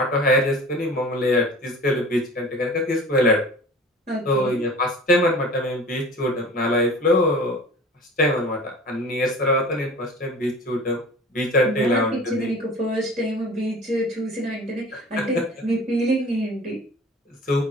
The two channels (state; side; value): normal; both; correlation 0.41